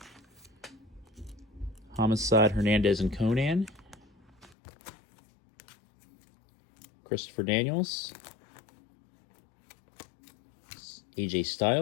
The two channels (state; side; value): drops out; right; at 4.5 s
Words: Homicide Hernandez and Conan. Christopher Daniels. AJ